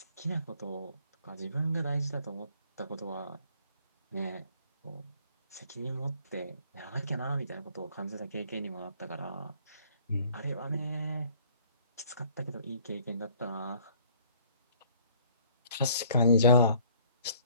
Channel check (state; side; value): inverted; both; correlation -0.59